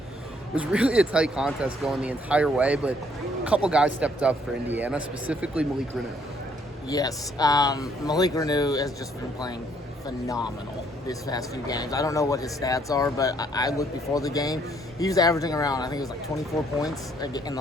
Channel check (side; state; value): both; normal; correlation 0.66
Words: was really a tight contest going the entire way, but a couple guys stepped up for Indiana, specifically Malik Renu. Yes, Malik Renu has just been playing phenomenal these past few games. I don't know what his stats are, but I looked before the game. He was averaging around, I think it was like 24 points in the